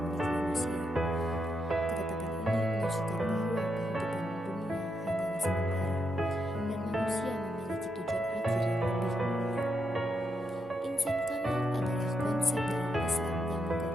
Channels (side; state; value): both; normal; correlation 0.82